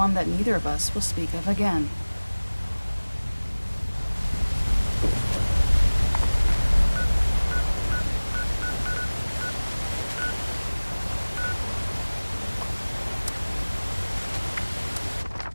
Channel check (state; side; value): inverted; both; correlation -1.00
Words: that neither of us will speak of again.